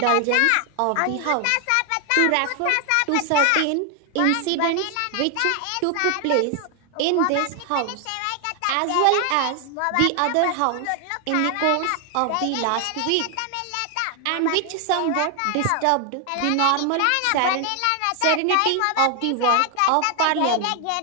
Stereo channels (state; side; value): different; both; correlation 0.01